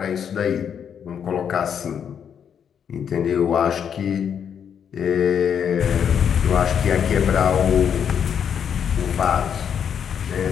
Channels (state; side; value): quieter; right; 8.0 dB